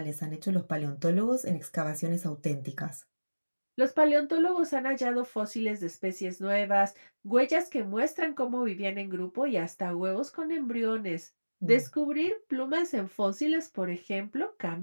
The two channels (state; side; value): inverted; both; correlation -1.00